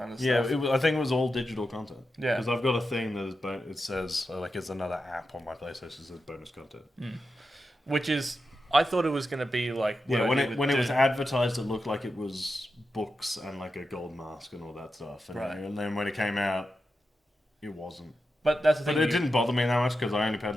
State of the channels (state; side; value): normal; both; correlation 0.89